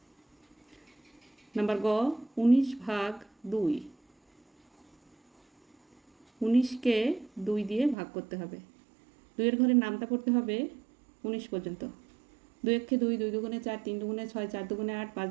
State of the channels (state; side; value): drops out; left; at 8.0 s